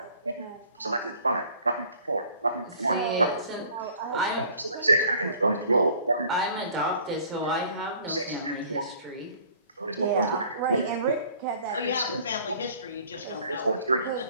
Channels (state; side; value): inverted; both; correlation -0.52